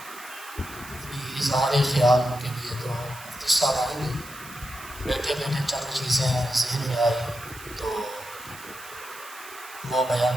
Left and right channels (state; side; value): noise; right; hiss, 17 dB below the sound